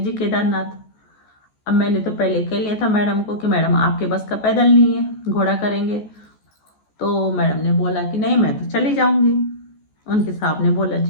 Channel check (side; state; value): right; late; 14 ms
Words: केदारनाथ। अब मैंने तो पहले कह लिया था मैडम को कि मैडम आपके बस का पैदल नहीं है, घोड़ा करेंगे। तो मैडम ने बोला कि नहीं मैं तो चली जाऊंगी। उनके साहब ने बोला